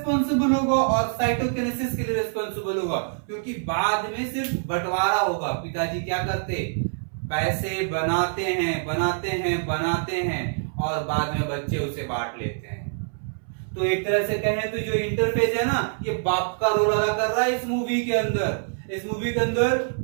होगा और साइटोकाइनेसिस के लिए रिस्पॉन्सिबल होगा, क्योंकि बाद में सिर्फ बंटवारा होगा। पिताजी क्या करते, पैसे बनाते हैं और बाद में बच्चे उसे बांट लेते हैं। तो एक तरह से कहें तो जो इंटरफेस है ना, ये बाप का रोल अदा कर रहा है इस मूवी के अंदर। इस मूवी के अंदर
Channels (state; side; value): silent; left; 62 dB below the other